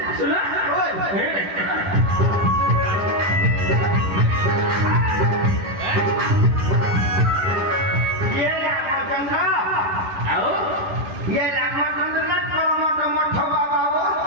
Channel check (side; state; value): left; late; 11 ms